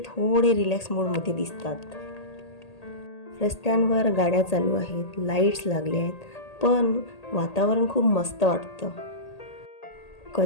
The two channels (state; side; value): late; right; 1.8 ms